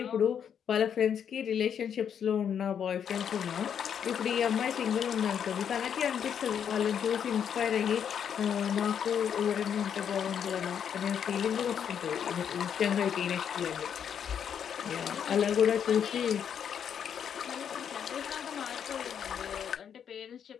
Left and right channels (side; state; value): right; quieter; 8.2 dB